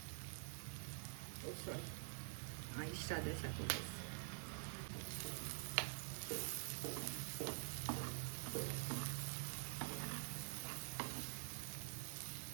ಸಾರಿ, ಇಷ್ಟ ಆದರೆ ಸಾಕು ಗೈಸ್.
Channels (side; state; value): left; silent; digital silence